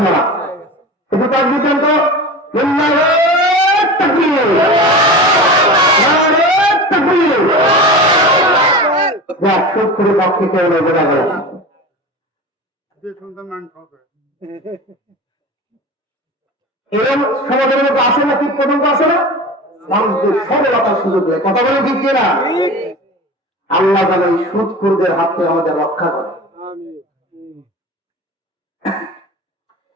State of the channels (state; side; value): normal; both; correlation 0.32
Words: একটু কাজ দিতেন তো। সুদখোরের পক্ষে কেউ বোঝা গেল এরকম সমাজের মধ্যে আসে না, ঠিক পর্যন্ত আসে না, মানুষদের সরলতার সুযোগ দেয়। কথা বলে ঠিক না? আল্লাহ যেন এই সুদখোরদের হাত থেকে আমাদের রক্ষা করে।